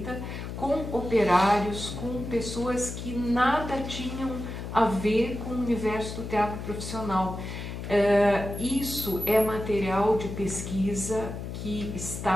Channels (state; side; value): noise; left; hum, 7 dB below the sound